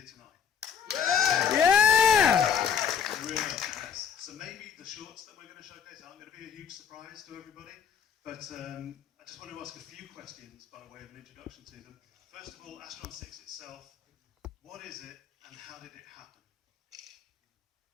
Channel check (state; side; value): quieter; right; 7.4 dB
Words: tonight. Yeah! Really nice. So maybe the shorts that we're going to showcase aren't going to be a huge surprise to everybody, but I just want to ask a few questions by way of an introduction to them. First of all, Astron-6 itself, what is it and how did it happen?